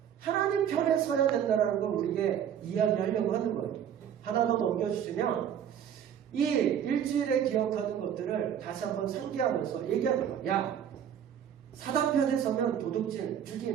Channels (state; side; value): quieter; left; 9.1 dB